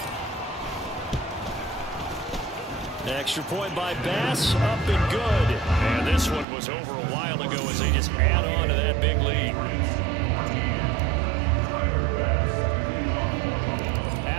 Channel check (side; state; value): left; drops out; at 6.5 s